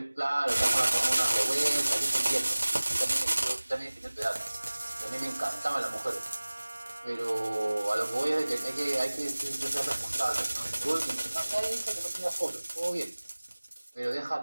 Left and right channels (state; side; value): inverted; both; correlation -1.00